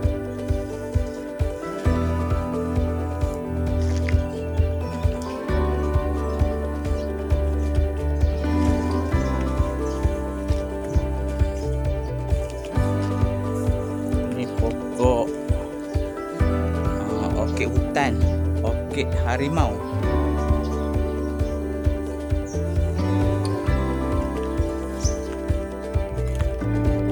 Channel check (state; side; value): identical; both; correlation 1.00